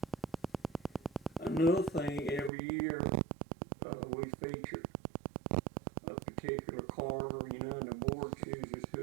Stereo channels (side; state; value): left; drops out; at 2.5 s